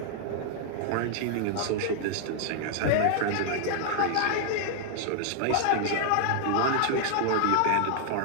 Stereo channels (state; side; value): different; both; correlation 0.00